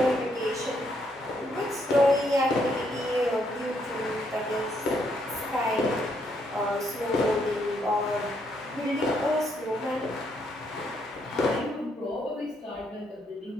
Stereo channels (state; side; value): normal; both; correlation 0.74